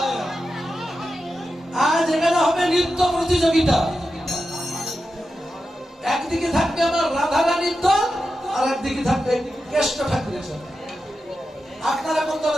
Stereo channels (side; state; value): both; normal; correlation 0.90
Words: আজ এখানে হবে নৃত্য প্রতিযোগিতা। একদিকে থাকবে আমার রাধারানীর দল, আর একদিকে থাকবে কেষ্ট ঠাকুরের দল। আপনারা কোন